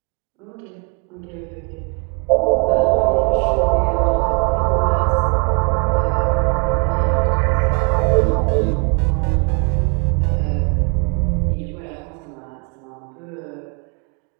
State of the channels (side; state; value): left; quieter; 33.4 dB